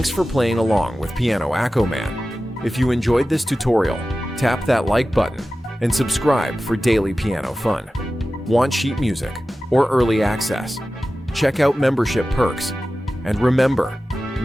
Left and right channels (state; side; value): normal; both; correlation 0.95